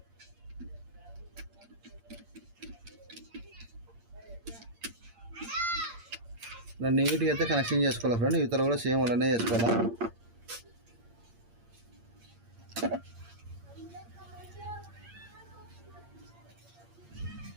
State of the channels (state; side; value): late; left; 8.7 ms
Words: నీట్గా అయితే కనెక్షన్ చేసుకోవాలి ఫ్రెండ్. ఇతర కూడా సేమ్ అలానే చేసుకోవాలా.